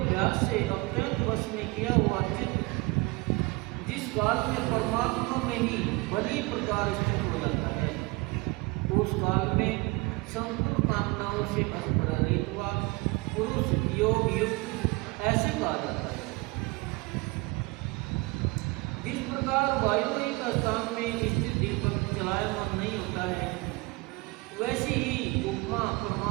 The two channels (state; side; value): quieter; left; 24.9 dB